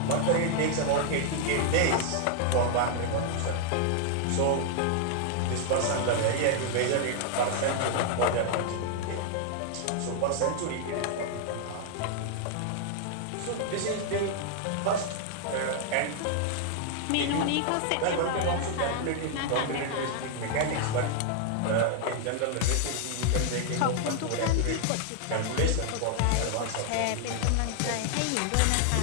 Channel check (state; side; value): different; both; correlation 0.00